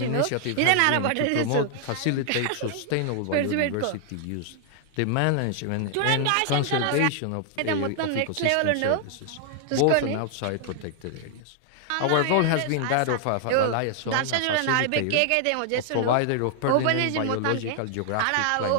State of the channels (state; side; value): different; both; correlation 0.00